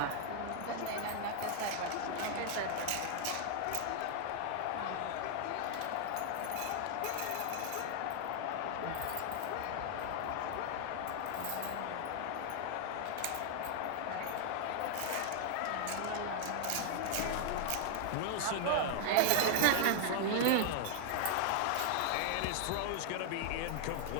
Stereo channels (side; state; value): both; different; correlation 0.00